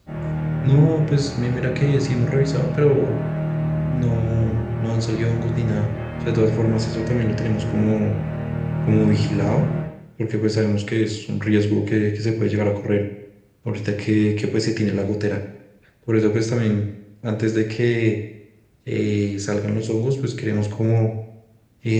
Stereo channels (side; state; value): both; identical; correlation 1.00